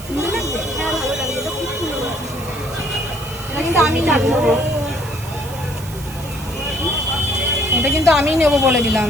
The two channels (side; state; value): right; noise; hiss, 16 dB below the sound